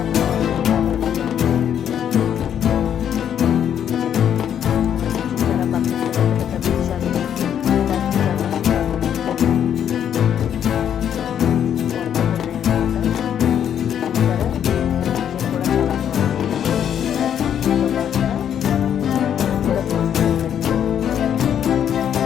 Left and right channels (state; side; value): quieter; right; 9.3 dB